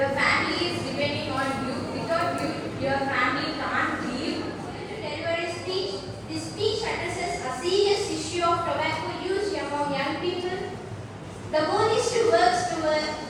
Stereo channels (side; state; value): both; identical; correlation 1.00